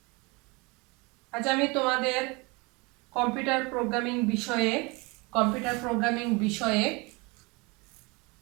আজ আমি তোমাদের কম্পিউটার প্রোগ্রামিং বিষয়ে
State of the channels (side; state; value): left; quieter; 27.2 dB